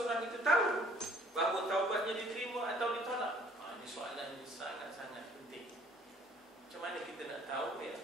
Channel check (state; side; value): normal; both; correlation 0.57